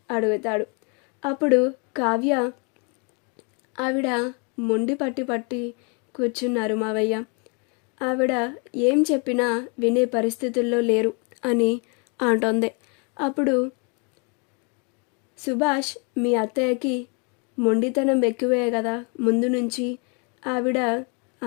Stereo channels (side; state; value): right; quieter; 35.2 dB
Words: అడుగుతాడు. అప్పుడు కావ్య ఆవిడ మొండి పట్టి కూర్చున్నారు మావయ్య, ఆవిడ ఏం చెప్పినా వినే పరిస్థితుల్లో లేరు అని అంటోంది. అప్పుడు సుభాష్ మీ అత్తయ్యకి మొండితనం ఎక్కువే కదా ముందు నుంచి, ఆవిడ